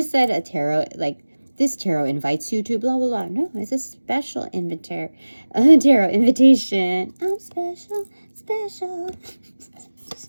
said a tarot, like, this tarot invites you to blah, blah, blah. No, it's a special tarot invitation. I'm special.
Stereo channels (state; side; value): inverted; both; correlation -1.00